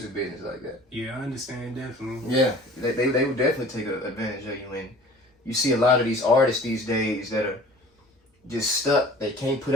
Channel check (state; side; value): normal; both; correlation 0.46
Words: business like that. Yeah, I understand, definitely. Yeah, they would definitely take advantage of you. And you see a lot of these artists these days that are just stuck. They can't put